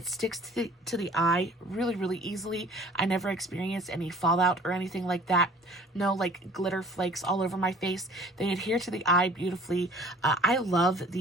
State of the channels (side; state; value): both; normal; correlation 0.51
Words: sticks to the eye really easily. I never experienced any fallout or anything like that. No like glitter flakes all over my face. They adhere to the eye beautifully. I love